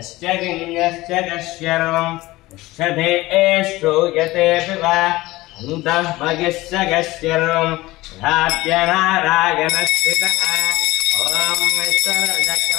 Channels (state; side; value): quieter; right; 19.0 dB